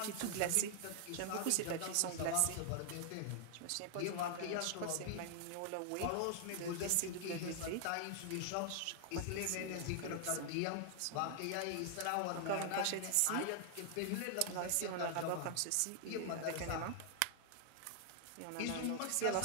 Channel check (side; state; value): both; different; correlation 0.00